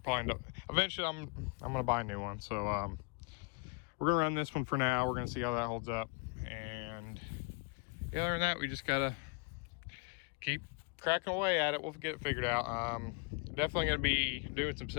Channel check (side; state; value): right; quieter; 31.6 dB